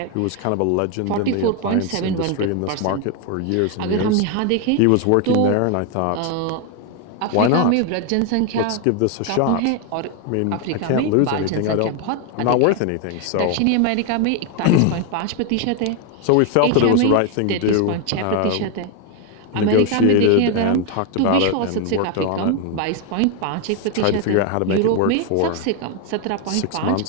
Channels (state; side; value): different; both; correlation 0.01